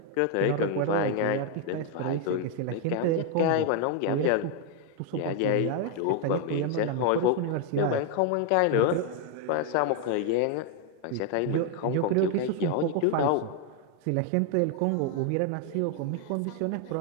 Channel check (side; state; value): both; different; correlation 0.01